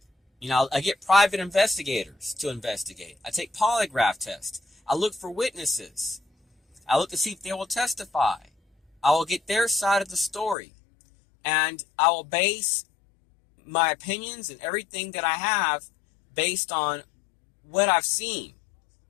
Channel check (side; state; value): right; drops out; at 10.6 s